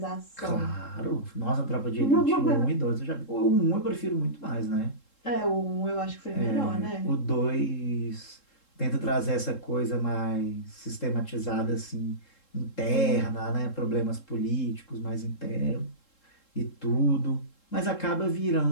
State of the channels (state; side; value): late; right; 3.7 ms